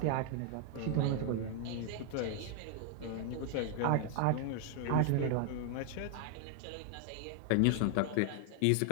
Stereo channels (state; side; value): different; both; correlation 0.00